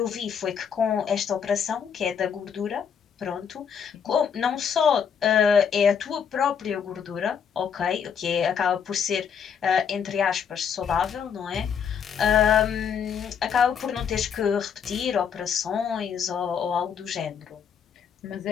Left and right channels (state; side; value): quieter; right; 7.3 dB